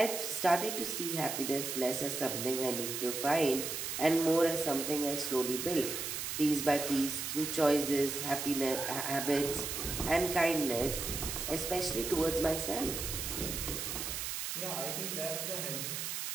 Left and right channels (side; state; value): right; noise; hiss, 4 dB below the sound